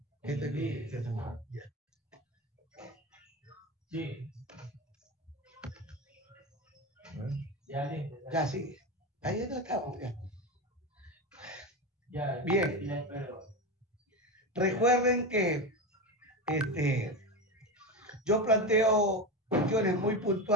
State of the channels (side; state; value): both; normal; correlation 0.20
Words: Este es Sí, ya. Sí. Ya listo. Ya, sí. Ahí no estamos. Ya. Bien. Recuerden que yo planteo cuestiones muy